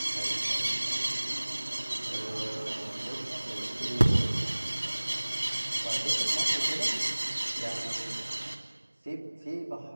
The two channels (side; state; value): both; inverted; correlation -1.00